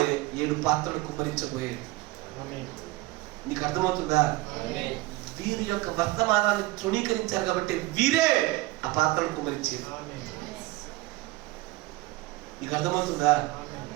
7 పాత్రలు కుమ్మరించబోయేది. నీకు అర్థమవుతుందా? వీరి యొక్క వర్తమానాన్ని తృణీకరించారు కాబట్టి వీరే ఆ పాత్రలు కుమ్మరించేది. నీకు అర్థమవుతుందా?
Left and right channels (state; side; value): quieter; left; 19.3 dB